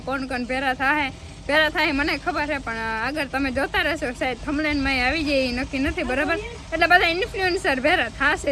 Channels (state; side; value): identical; both; correlation 1.00